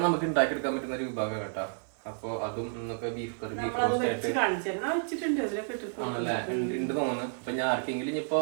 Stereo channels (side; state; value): left; silent; digital silence